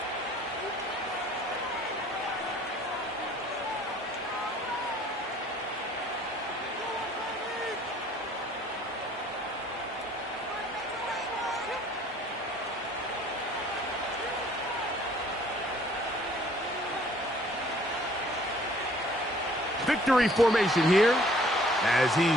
Victory formation here as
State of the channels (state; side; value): normal; both; correlation 0.57